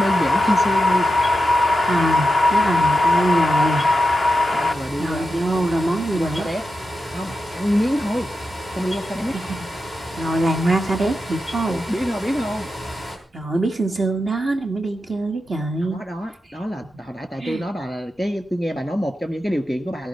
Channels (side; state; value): both; normal; correlation 0.89